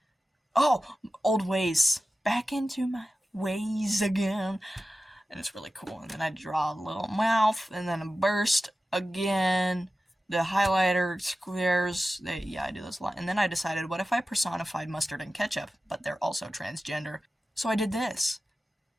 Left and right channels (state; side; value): normal; both; correlation 0.94